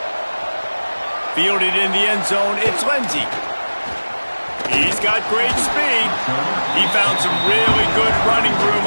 Fielded in the end zone, it's Lindsey. He's got great speed. He found some really good running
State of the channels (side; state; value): both; inverted; correlation -1.00